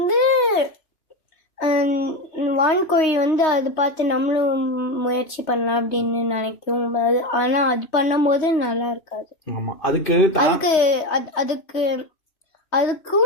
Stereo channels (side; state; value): right; late; 3.2 ms